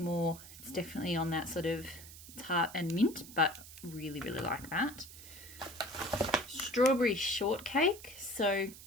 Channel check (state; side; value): noise; right; hiss, 16 dB below the sound